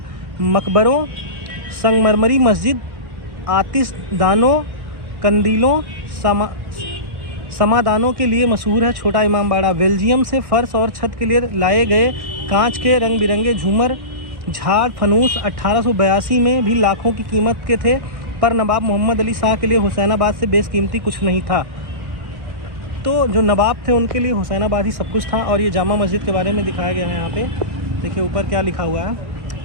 मकबरों, संगमरमरी मस्जिद, आतिशदानों, कंदीलों, समादानों के लिए मशहूर है। छोटा इमामबाड़ा बेल्जियम से फर्श और छत के लिए लाए गए कांच के रंग बिरंगे झूमर, झाड़, फनूस 1882 में भी लाखों की कीमत के थे। पर नवाब मोहम्मद अली शाह के लिए हुसैनाबाद से बेशकीमती कुछ नहीं था। तो जो नवाब थे उनके लिए हुसैनाबाद ही सब कुछ था। और ये जामा मस्जिद के बारे में दिखाया गया है यहाँ पे। देखिए ऊपर क्या लिखा हुआ है।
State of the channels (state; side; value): late; left; 1.6 ms